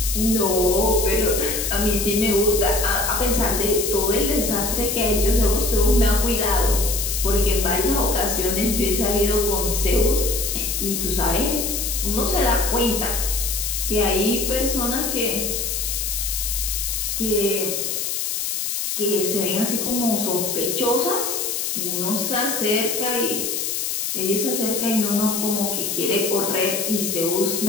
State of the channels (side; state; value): left; noise; hiss, 1 dB below the sound